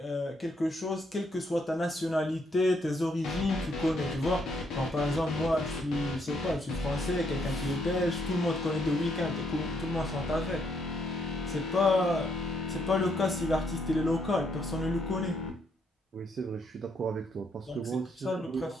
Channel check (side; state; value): both; normal; correlation 0.73